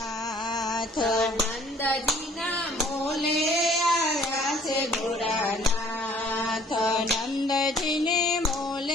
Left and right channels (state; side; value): normal; both; correlation 0.57